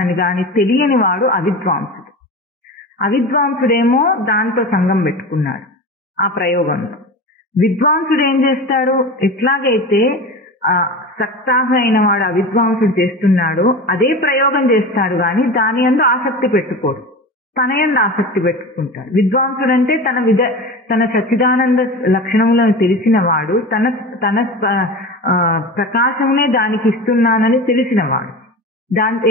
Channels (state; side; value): normal; both; correlation 0.29